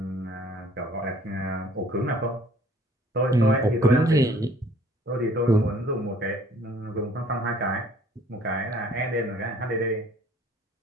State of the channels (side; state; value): both; normal; correlation 0.55